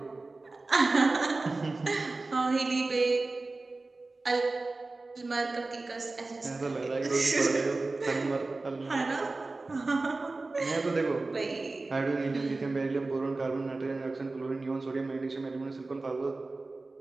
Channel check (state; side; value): quieter; left; 3.4 dB